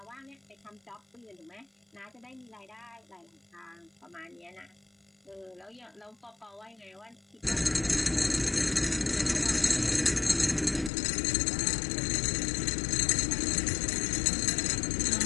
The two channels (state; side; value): drops out; right; at 10.9 s